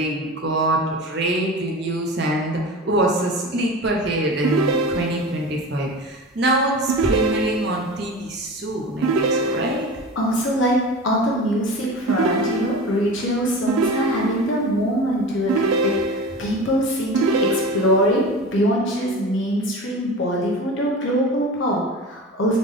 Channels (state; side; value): normal; both; correlation 0.32